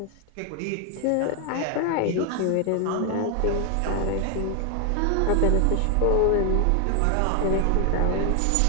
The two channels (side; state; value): both; different; correlation 0.00